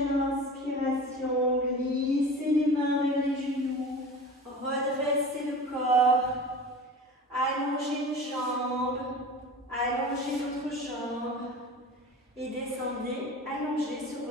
inspiration, glissez les mains vers les genoux, redressez le corps, allongez une jambe, allongez l'autre jambe et descendez allongez sur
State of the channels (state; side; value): normal; both; correlation 0.36